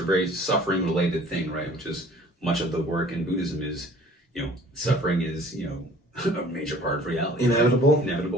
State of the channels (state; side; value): normal; both; correlation 0.51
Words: very suffering related thing, right? Which is much of the work in Buddhism is, suffering is, a major part of reality. Inevitable. Right?